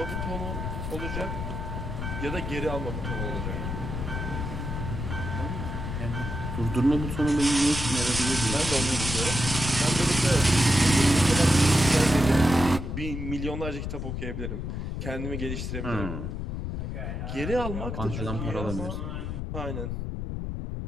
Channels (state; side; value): noise; left; rumble, 4 dB below the sound